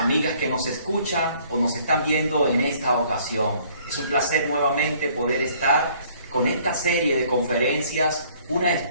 que nos escuchan o nos están viendo en esta ocasión. Es un placer nuevamente poder estar con esta serie de conferencias, Una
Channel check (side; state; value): both; inverted; correlation -0.59